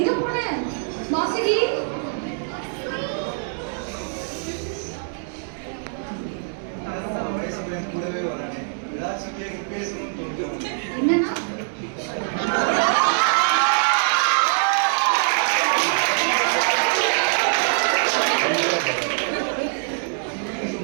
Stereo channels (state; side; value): silent; left; digital silence